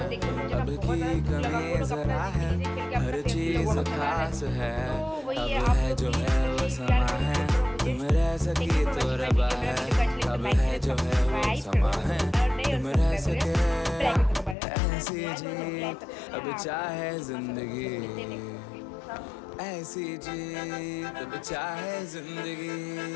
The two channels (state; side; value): drops out; right; at 14.6 s